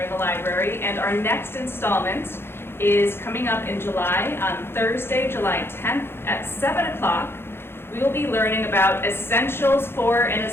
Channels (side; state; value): right; late; 0.11 ms